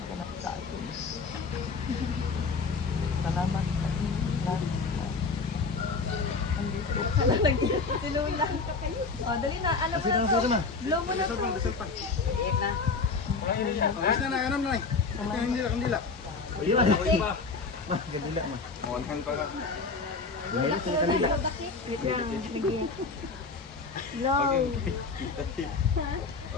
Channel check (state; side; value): quieter; right; 4.4 dB